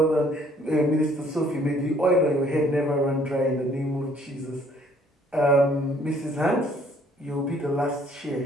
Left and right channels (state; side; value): normal; both; correlation 0.61